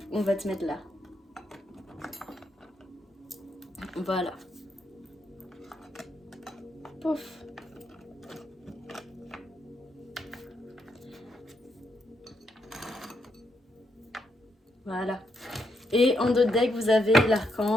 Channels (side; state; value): both; normal; correlation 0.79